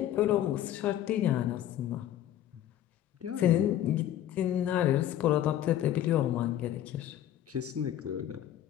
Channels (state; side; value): quieter; right; 11.9 dB